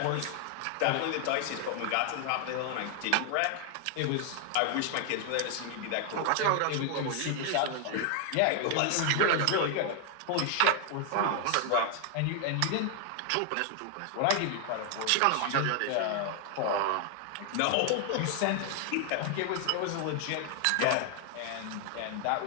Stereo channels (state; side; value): different; both; correlation 0.00